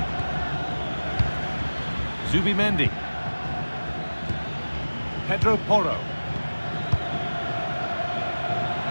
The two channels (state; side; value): inverted; both; correlation -1.00